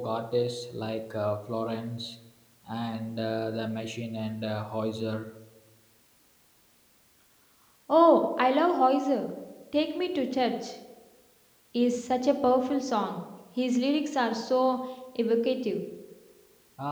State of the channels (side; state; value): both; identical; correlation 1.00